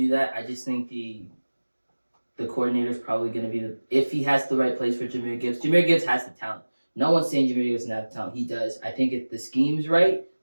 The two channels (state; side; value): inverted; both; correlation -1.00